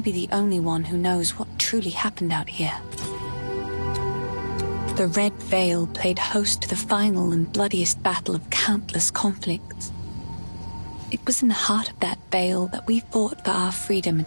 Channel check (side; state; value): both; inverted; correlation -1.00